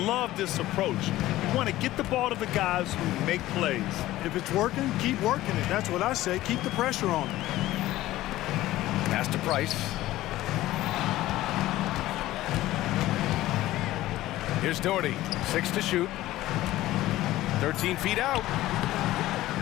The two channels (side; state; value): right; quieter; 15.9 dB